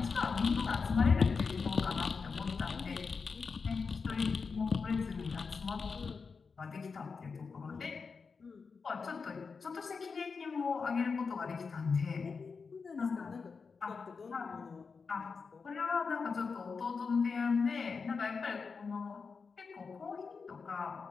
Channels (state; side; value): quieter; right; 5.1 dB